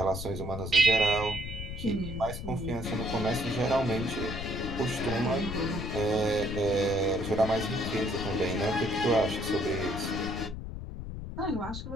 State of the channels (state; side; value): noise; left; rumble, 7 dB below the sound